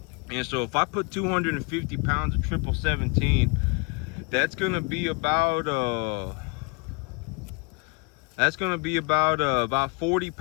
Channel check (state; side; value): quieter; right; 30.7 dB